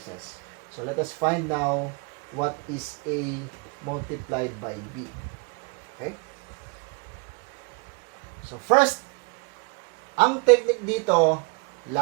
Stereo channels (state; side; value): quieter; left; 31.5 dB